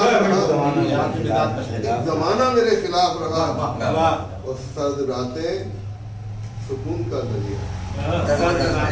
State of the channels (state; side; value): identical; both; correlation 1.00